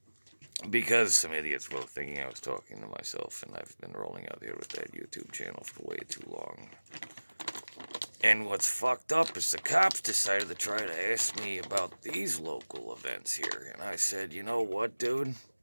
Because some idiots were thinking I was talking to myself, and I've been rolling out here with that YouTube channel for way too long. And what's fucked up is the cops decided to try to ask me about these local events here. And I said, you know what, dude?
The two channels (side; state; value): both; inverted; correlation -1.00